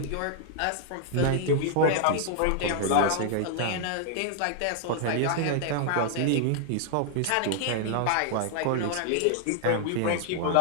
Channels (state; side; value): different; both; correlation 0.00